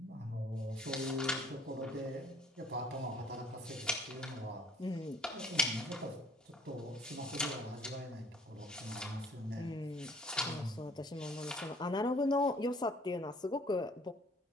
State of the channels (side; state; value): both; normal; correlation 0.57